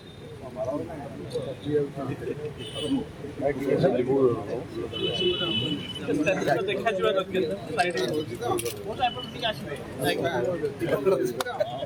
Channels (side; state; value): both; identical; correlation 1.00